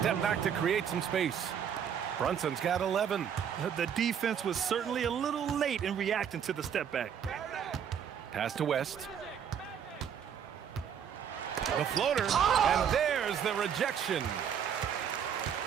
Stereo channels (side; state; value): left; quieter; 8.2 dB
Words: back to create some space. Brunson's got 11. The defense was certainly a little late in reacting to the step back. Pass to West. The floater, and there's the rejection.